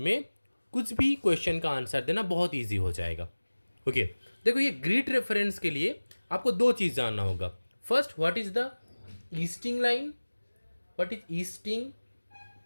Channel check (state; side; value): inverted; both; correlation -1.00